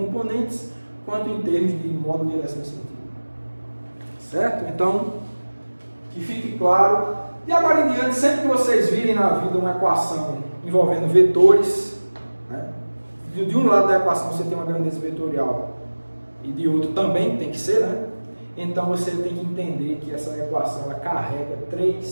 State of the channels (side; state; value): both; inverted; correlation -1.00